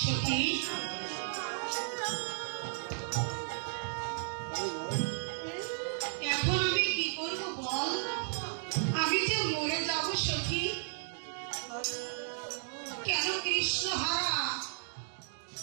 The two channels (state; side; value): silent; left; 55 dB below the other